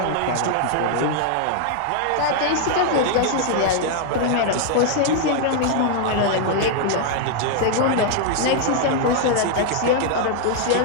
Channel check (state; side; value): different; both; correlation 0.00